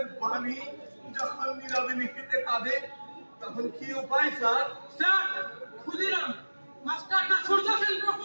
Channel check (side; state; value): both; inverted; correlation -1.00